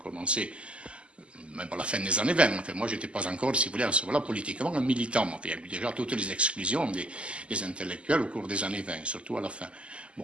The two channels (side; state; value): left; late; 0.055 ms